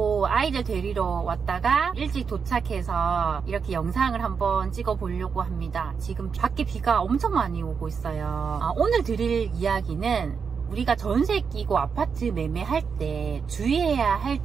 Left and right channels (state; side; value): quieter; left; 6.0 dB